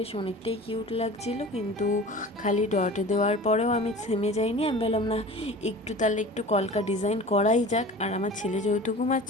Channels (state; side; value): normal; both; correlation 0.38